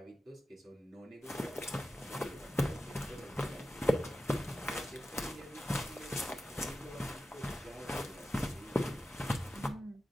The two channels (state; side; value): normal; both; correlation 0.92